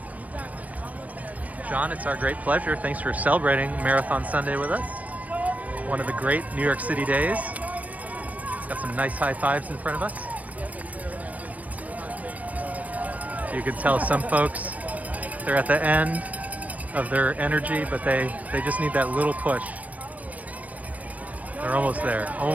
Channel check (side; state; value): left; late; 0.070 ms